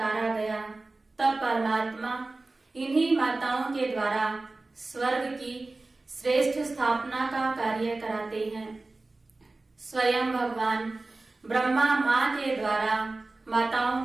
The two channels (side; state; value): left; quieter; 3.3 dB